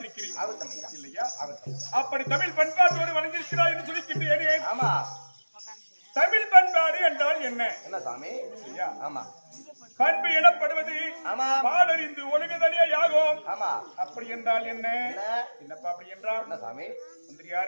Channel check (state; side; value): inverted; both; correlation -1.00